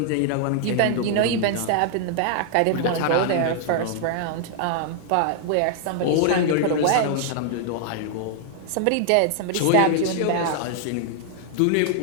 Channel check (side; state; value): both; different; correlation 0.00